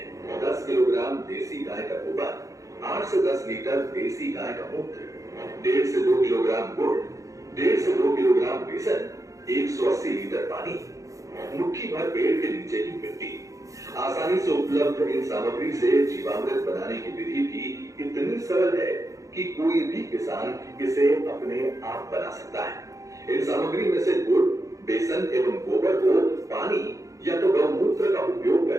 10 किलोग्राम देसी गाय का गोबर, 8 से 10 लीटर देसी गाय का मूत्र, 1.5 से 2 किलोग्राम गुड़, 1.5 से 2 किलोग्राम बेसन, 180 लीटर पानी, मुट्ठी भर पेड़ के नीचे की मिट्टी। आसानी से उपलब्ध इन सामग्री से जीवामृत बनाने की विधि भी इतनी सरल है कि कोई भी किसान इसे अपने आप बना सकता है। इन सामग्री में से गुड़, बेसन एवं गोबर को पानी या तो गौमूत्र का उपयोग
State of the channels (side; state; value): left; late; 0.16 ms